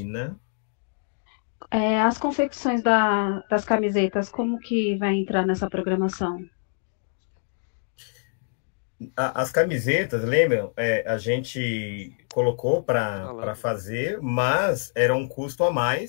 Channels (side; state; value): right; silent; digital silence